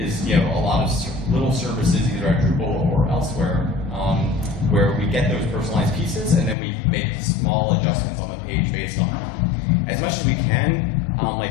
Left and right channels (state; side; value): drops out; right; at 6.6 s